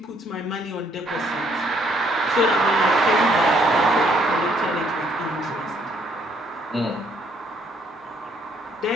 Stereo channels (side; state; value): both; normal; correlation 0.67